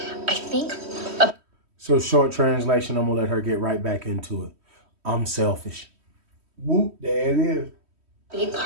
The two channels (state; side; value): late; left; 3.1 ms